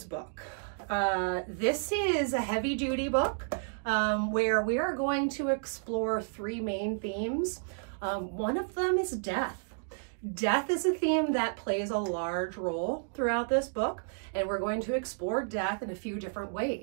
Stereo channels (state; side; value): silent; left; digital silence